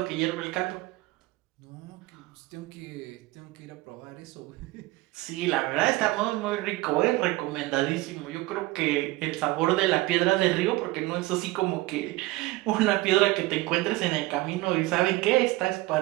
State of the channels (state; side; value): quieter; left; 19.9 dB